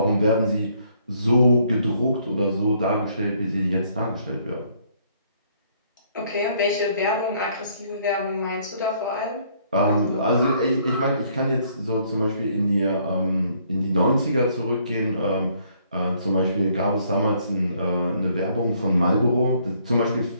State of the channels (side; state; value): both; inverted; correlation -0.66